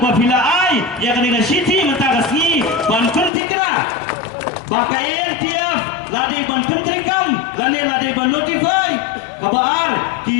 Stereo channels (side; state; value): right; drops out; at 3.3 s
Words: ai ya akan dikasih mentah kasih ban penting kena. Baka ANTF ladai ban penting kam, ladai ban notify kabar